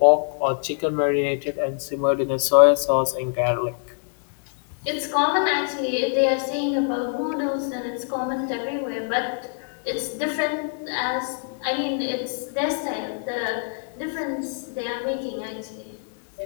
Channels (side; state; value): right; silent; 62 dB below the other